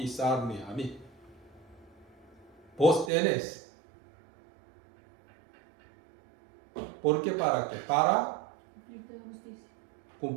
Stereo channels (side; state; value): left; drops out; at 3.1 s